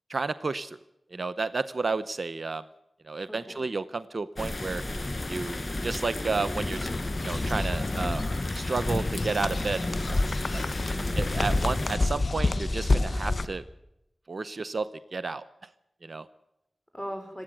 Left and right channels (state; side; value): normal; both; correlation 0.94